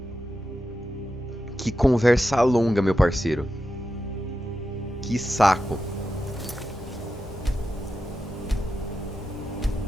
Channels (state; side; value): normal; both; correlation 0.89